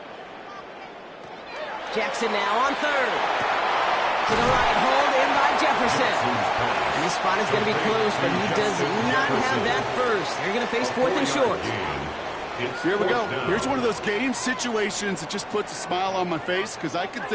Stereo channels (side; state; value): both; identical; correlation 1.00